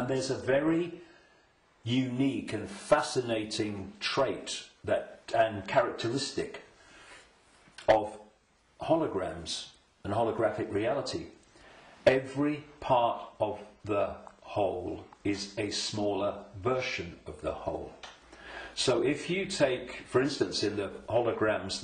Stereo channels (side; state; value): both; identical; correlation 1.00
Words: there's a very unique and fascinating trait and characteristic of holograms and holographic reality. Every part of the whole is a smaller version of the whole. So if you take, for instance, in the holograms